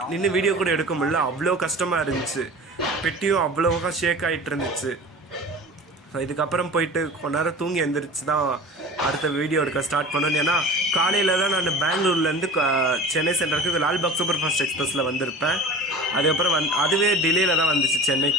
நின்று வீடியோ கூட எடுக்க முடியல, அவ்வளோ கஷ்டமாக இருந்துச்சு. பெட்டியும் அவ்வளோவா ஷேக் ஆகிட்டு இருந்துச்சு. ஸோ இதுக்கப்புறம் போயிட்டு கொஞ்ச நேரம் தூங்கி எழுந்திரிச்சு தான் அடுத்த வீடியோ எடுக்க ஸ்டார்ட் பண்ணணும். ஏன்னா காலையில் தான் நான் பெங்களூர்லேருந்து சென்னை சென்டருக்கு லால்பாக் சூப்பர் ஃபாஸ்ட் எக்ஸ்பிரஸில் வந்திருப்பேன். அதுக்கப்புறம் அதுவே டிலேயில் தான் வந்துச்சு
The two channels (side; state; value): both; normal; correlation 0.39